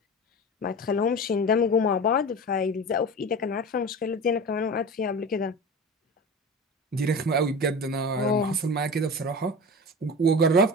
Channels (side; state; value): both; normal; correlation 0.31